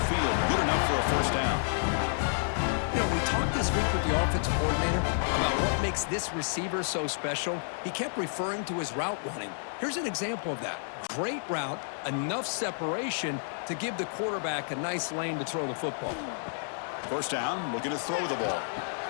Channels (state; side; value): silent; right; digital silence